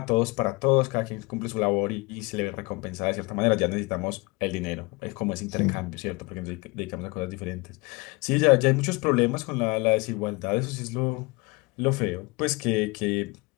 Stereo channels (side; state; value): right; quieter; 25.5 dB